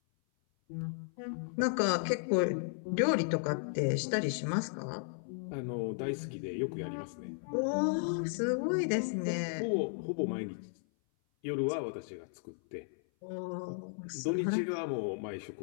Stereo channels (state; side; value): silent; right; 55 dB below the other